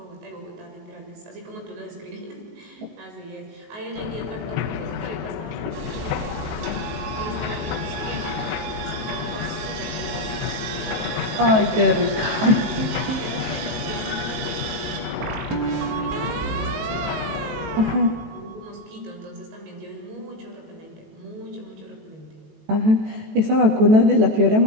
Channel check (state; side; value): late; left; 18 ms